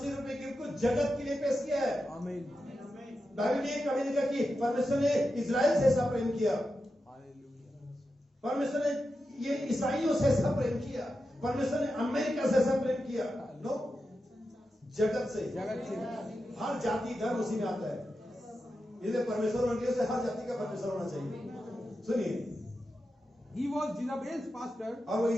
रूपी गिफ्ट को जगत के लिए पेश किया है। आमीन। बाइबल ने कभी नहीं कहा कि परमेश्वर ने इजराइल से ऐसा प्रेम किया, परमेश्वर ने ये ईसाइयों से ऐसा प्रेम किया, परमेश्वर ने अमेरिका से ऐसा प्रेम किया। नो, जगत से, हर जाति धर्म उसी में आता है, इसलिए परमेश्वर मंडियों से हर जाति का परमेश्वर होना चाहिए। सुनिए, He was Jezebel's pastor. और वो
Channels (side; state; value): both; normal; correlation 0.90